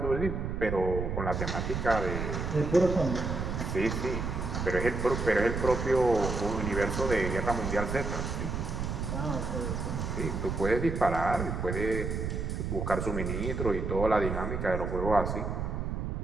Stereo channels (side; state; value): right; noise; rumble, 3 dB below the sound